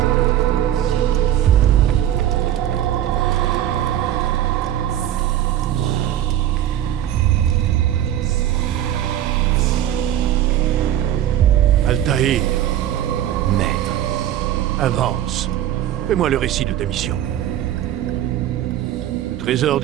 Altaïr, Maître. avance. Fais-moi le récit de ta mission. Le trésor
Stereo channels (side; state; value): left; quieter; 11.7 dB